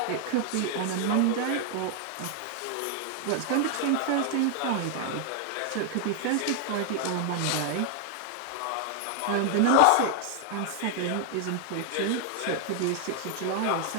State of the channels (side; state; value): both; different; correlation 0.00